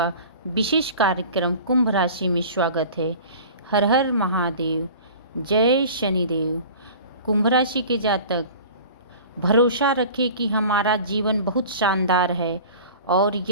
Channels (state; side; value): inverted; both; correlation -0.41